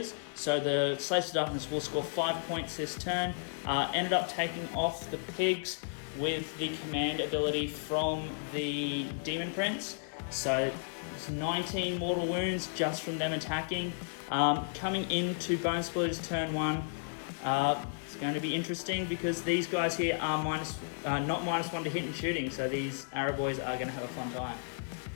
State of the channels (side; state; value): right; silent; 56 dB below the other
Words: so the Slaves to Darkness will score 5 points this turn. Ended up taking off the Pigs with the command ability from the Demon Prince. So it's 19 mortal wounds just from them attacking. Coming into Bonesplitterz turn 1, it's going to be interesting because these guys here are not -1 to hit and shooting, so these Arab boys are going to have a fun time.